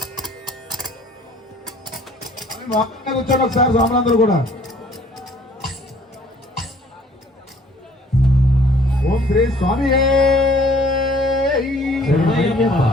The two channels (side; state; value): both; normal; correlation 0.56